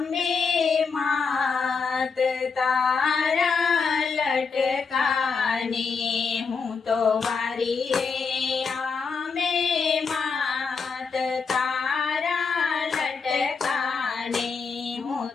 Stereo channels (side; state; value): right; quieter; 5.2 dB